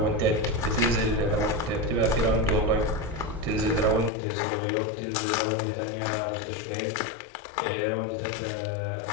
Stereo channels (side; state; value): right; drops out; at 4.1 s